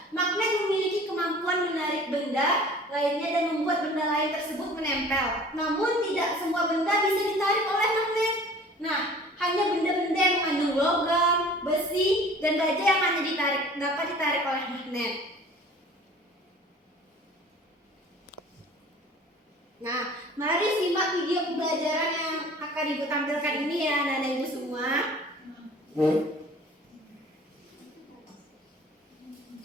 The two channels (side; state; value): both; normal; correlation 0.47